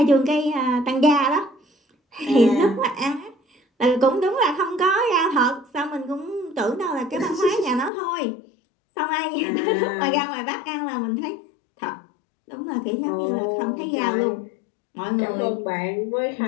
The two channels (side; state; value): right; drops out; at 7.9 s